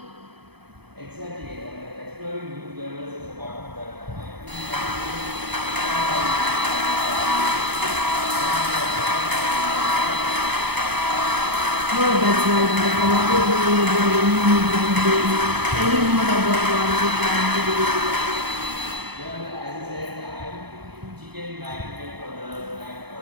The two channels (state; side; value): late; left; 0.98 ms